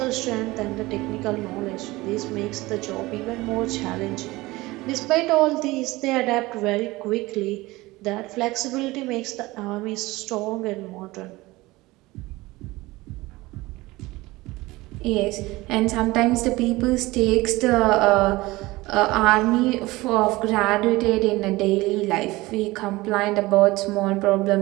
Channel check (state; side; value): quieter; left; 20.3 dB